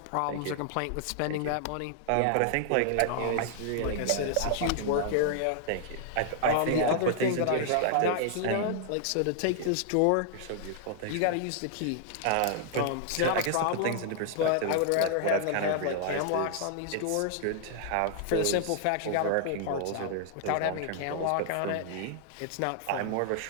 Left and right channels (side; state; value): both; different; correlation 0.00